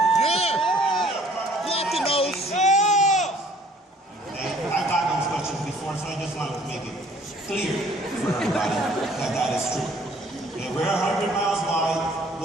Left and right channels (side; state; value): both; normal; correlation 0.57